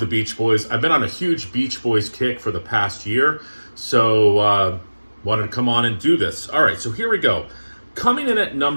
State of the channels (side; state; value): both; inverted; correlation -1.00